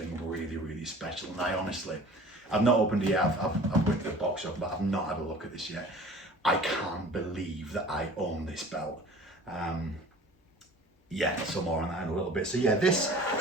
really special. And I honestly, I've not opened it yet. I've whipped the box up, but I've not had a look at this yet. I can't believe that I own this belt. Yeah, so more on that in a little bit. So yeah, this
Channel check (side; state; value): both; normal; correlation 0.45